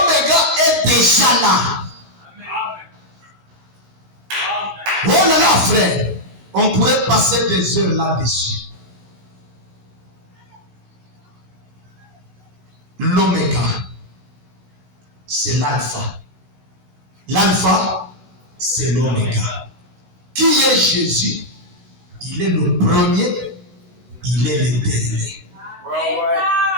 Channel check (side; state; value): left; late; 16 ms